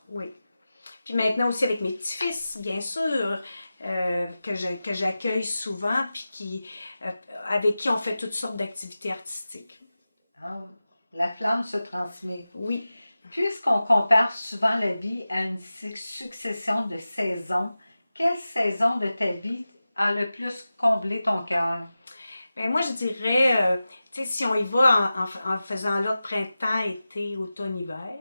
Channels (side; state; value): both; inverted; correlation -0.95